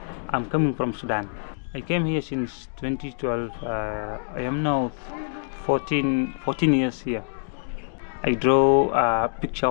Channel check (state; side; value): silent; right; digital silence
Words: I'm coming from Sudan. I came here since 2012. I am now 14 years here. I draw a picture